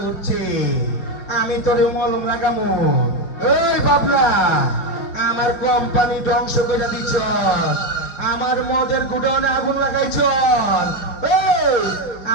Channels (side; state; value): right; late; 4.9 ms